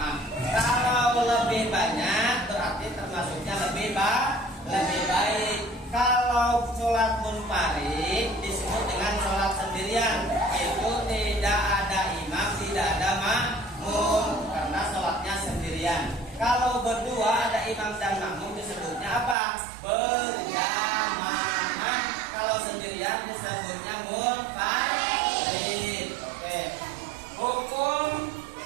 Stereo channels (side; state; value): left; drops out; at 19.4 s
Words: Kalau lebih banyak berarti termasuknya lebih baik. Kalau sholat munfarid disebut dengan sholat sendirian. Itu tidak ada imam, tidak ada makmum, karena sholatnya sendirian. Kalau berdua ada imam dan makmum disebutnya apa? Berjamaah. Kalau sendirian disebutnya munfarid. Oke.